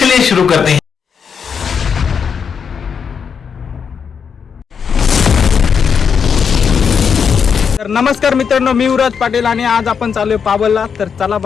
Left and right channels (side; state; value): right; quieter; 6.6 dB